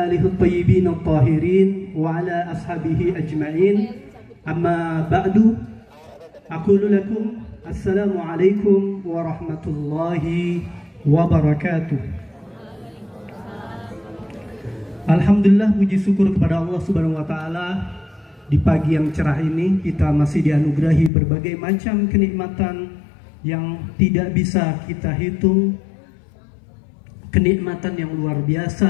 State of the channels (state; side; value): drops out; right; at 21.1 s